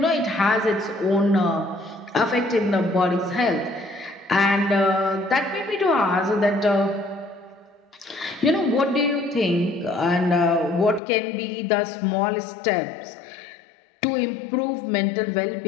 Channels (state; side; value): drops out; right; at 11.0 s